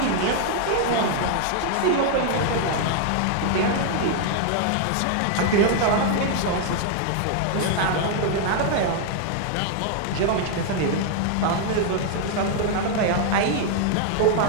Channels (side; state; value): both; different; correlation 0.00